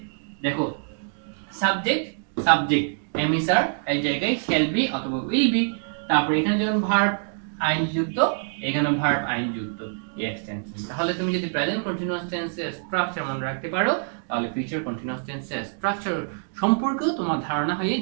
দেখো সাবজেক্ট সাবজেক্ট এম ইজ আর এই জায়গায় শ্যাল বি অথবা উইল বি। তারপর এখানে যেমন ভার্ব আইনজি যুক্ত, এখানে ভার্ব আইনজি যুক্ত এই এক্সটেনশন। তাহলে তুমি যদি প্রেজেন্ট কন্টিনিউয়াস টেন্সের স্ট্রাকচার মনে রাখতে পারো তাহলে ফিউচার কন্টিনিউয়াস টেন্সের স্ট্রাকচার সম্পর্কেও তোমার ধারণা হয়ে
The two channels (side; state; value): left; silent; digital silence